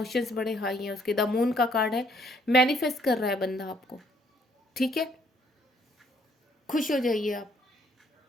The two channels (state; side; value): normal; both; correlation 0.66